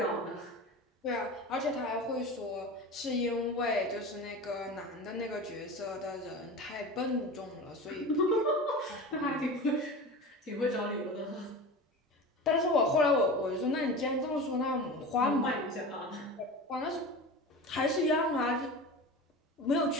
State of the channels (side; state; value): both; normal; correlation 0.31